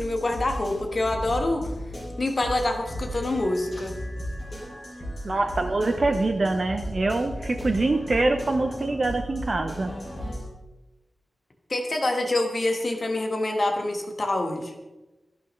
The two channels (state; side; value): normal; both; correlation 0.94